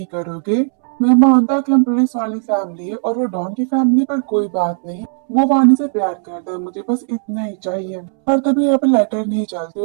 करोगे। मैं मानता कि हम पुलिस वाली फैमिली है और वो डॉन की फैमिली, पर कोई बात नहीं, वो वानी से प्यार करता है, मुझे बस इतना ही चाहिए। और तभी यहाँ पर लेटर नहीं चलती,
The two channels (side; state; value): left; silent; 68 dB below the other